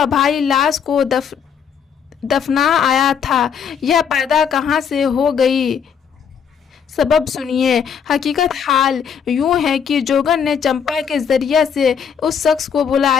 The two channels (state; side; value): quieter; right; 7.4 dB